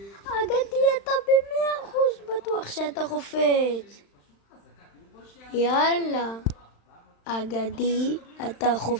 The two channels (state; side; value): late; right; 35 ms